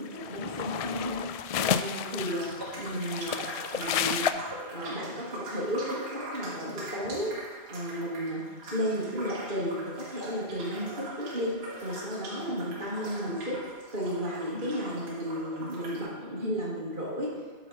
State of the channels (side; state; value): left; late; 1.7 ms